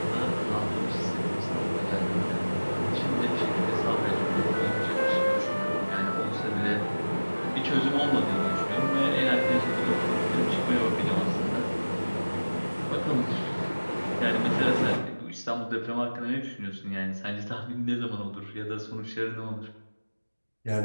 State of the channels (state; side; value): inverted; both; correlation -1.00